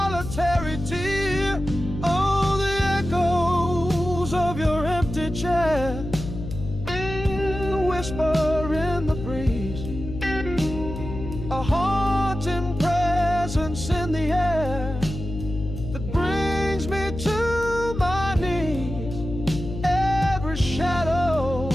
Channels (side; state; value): left; noise; hum, 8 dB below the sound